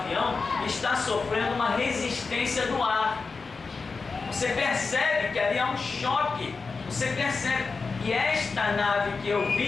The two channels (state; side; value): quieter; right; 4.5 dB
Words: está sofrendo uma resistência do ar. Você percebe que ali há um choque, você percebe. E esta nave que eu